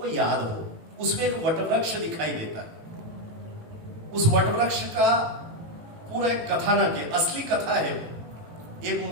याद हो, उसमें एक वटवृक्ष दिखाई देता है। उस वटवृक्ष का पूरा एक कथानक है, असली कथा है। एक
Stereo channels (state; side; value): late; left; 19 ms